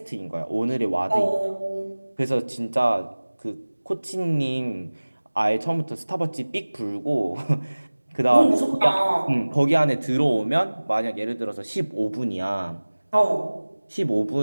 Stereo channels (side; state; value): both; inverted; correlation -1.00